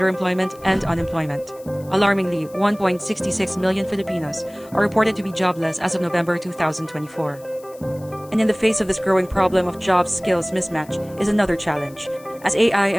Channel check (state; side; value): noise; left; hiss, 24 dB below the sound